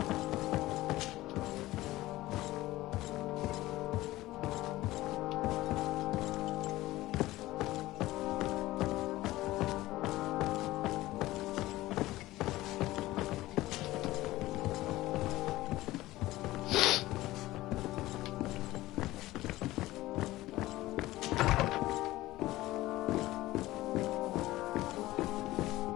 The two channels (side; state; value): right; quieter; 17.3 dB